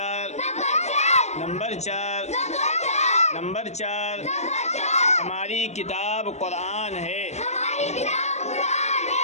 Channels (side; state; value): right; late; 0.32 ms